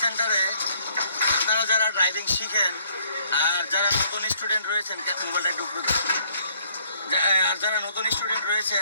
সেন্টারে আপনারা যারা ড্রাইভিং শিখেন আর যারা নতুন স্টুডেন্ট রয়েছেন, মোবাইলটা একটু উপরে ধরুন। আর যারা নতুন স্টুডেন্ট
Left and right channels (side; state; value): both; inverted; correlation -0.64